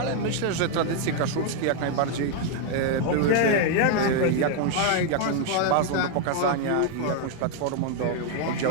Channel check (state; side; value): different; both; correlation 0.01